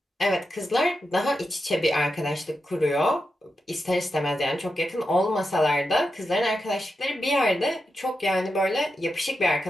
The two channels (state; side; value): normal; both; correlation 0.88